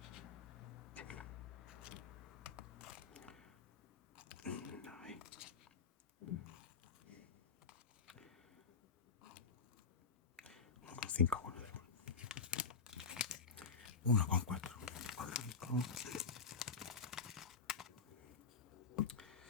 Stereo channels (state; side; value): quieter; right; 5.3 dB